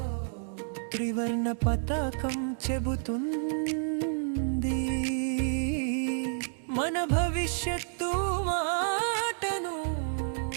త్రివర్ణ పతాకం చెబుతుంది మన భవిష్యత్తు మాటను.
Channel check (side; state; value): left; silent; digital silence